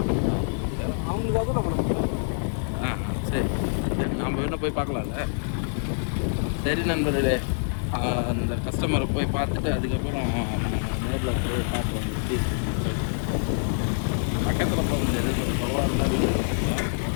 அவங்களுக்காக நம்ம சரி, நம்ம இன்னும் போய் பார்க்கலாம்ல. சரி நண்பர்களே, அந்த கஸ்டமரை போய் பார்த்துட்டு அதுக்கப்புறம் நேரில் போய் பார்த்து வந்துட்டு சொல்லிட்டு பக்கத்தில் போக முடியாது, கொஞ்சம் தொலைவாக இருந்தால் வீடியோ பார்க்கலாம்.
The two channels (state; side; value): silent; right; digital silence